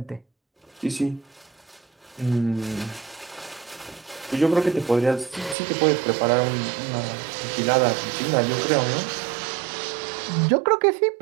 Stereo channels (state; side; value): drops out; left; at 5.6 s